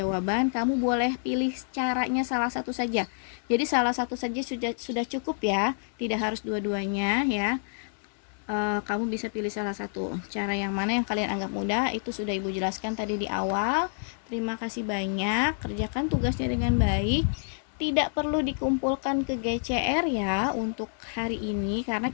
kamu boleh pilih caranya salah satu saja. Jadi salah satu saja sudah cukup ya, tidak harus dua-duanya ya. Kamu bisa pilih salah satu. Cara yang mana yang kalian anggap mudah itu sudah ibu jelaskan tadi di awal. Terima kasih banyak, kerjakan tugasnya dengan baik. Tidak perlu dikumpulkan ke GCR ya untuk hari ini, karena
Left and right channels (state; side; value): silent; right; digital silence